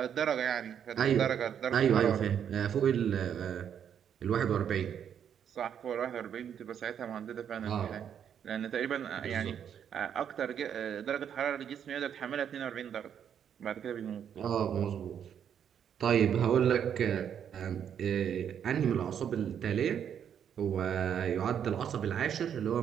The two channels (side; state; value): left; quieter; 8.6 dB